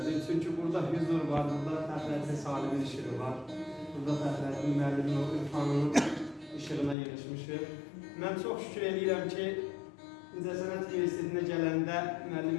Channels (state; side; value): drops out; right; at 7.0 s